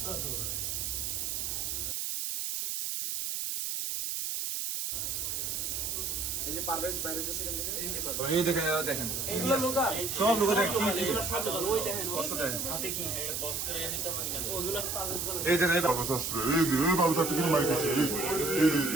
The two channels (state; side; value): noise; right; hiss, 2 dB below the sound